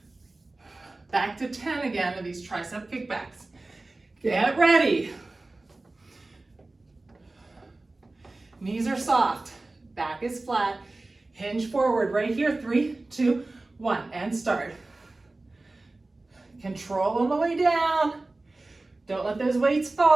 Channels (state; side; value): quieter; left; 3.1 dB